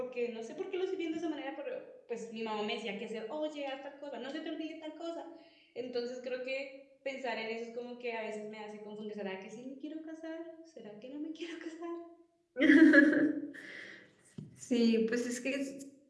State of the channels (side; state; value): both; identical; correlation 1.00